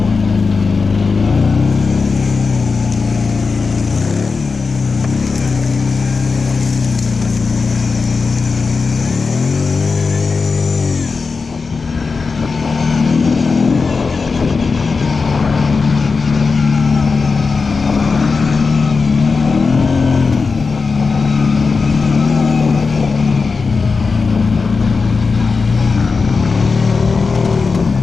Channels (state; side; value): quieter; right; 4.6 dB